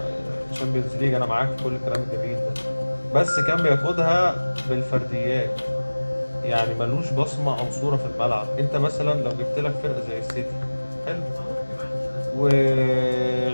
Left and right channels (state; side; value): inverted; both; correlation -1.00